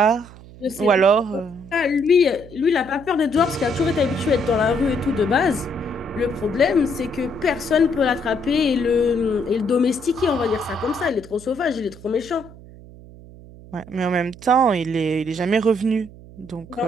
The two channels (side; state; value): right; noise; hum, 19 dB below the sound